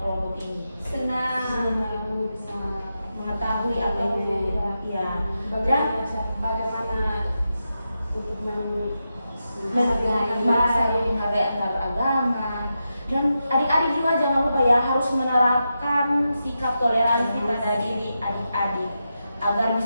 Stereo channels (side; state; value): both; inverted; correlation -0.88